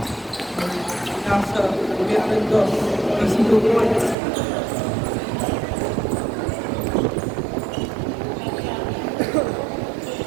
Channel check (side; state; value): left; drops out; at 4.2 s